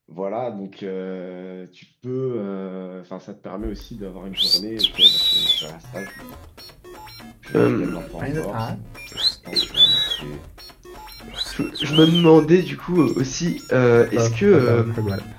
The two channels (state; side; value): identical; both; correlation 1.00